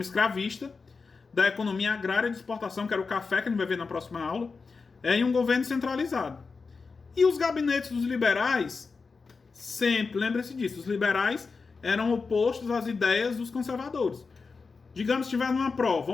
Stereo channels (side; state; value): right; quieter; 4.6 dB